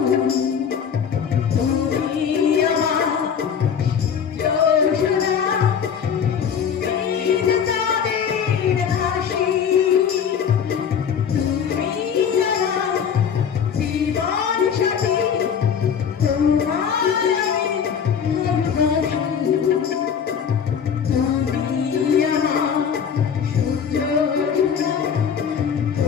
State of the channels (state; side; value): quieter; right; 7.4 dB